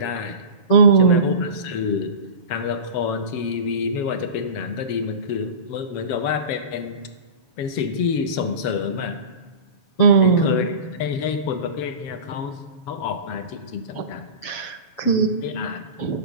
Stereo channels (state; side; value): late; right; 7.3 ms